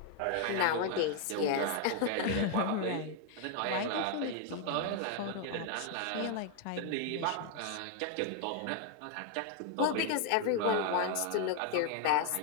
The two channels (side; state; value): both; different; correlation 0.00